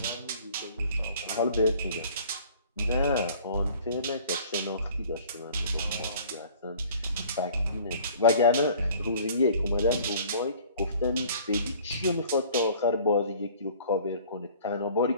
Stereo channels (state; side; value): inverted; both; correlation -0.51